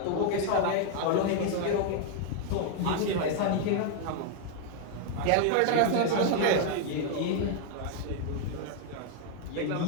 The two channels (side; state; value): both; different; correlation 0.00